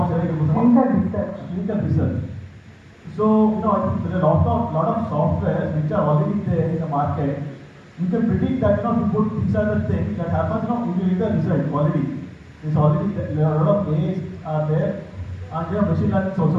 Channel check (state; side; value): identical; both; correlation 1.00